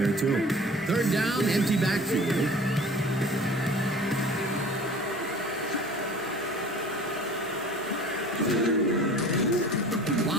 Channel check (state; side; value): noise; right; hum, 28 dB below the sound